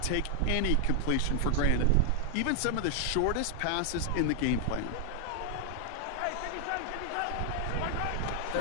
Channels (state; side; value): different; both; correlation 0.00